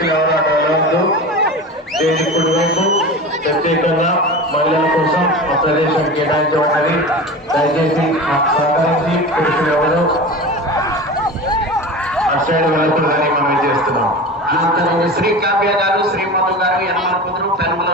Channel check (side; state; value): both; normal; correlation 0.30